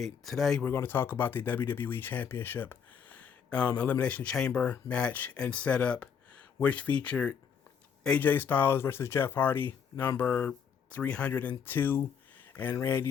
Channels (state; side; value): quieter; right; 7.2 dB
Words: Today we're going to talk about the WWE Championship Elimination Chamber match and setup, which featured AJ Styles versus Jeff Hardy, number 302, and